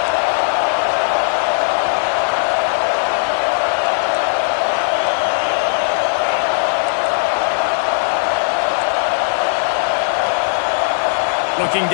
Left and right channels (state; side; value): silent; right; digital silence